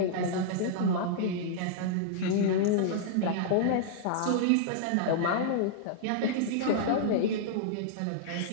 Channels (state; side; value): different; both; correlation -0.02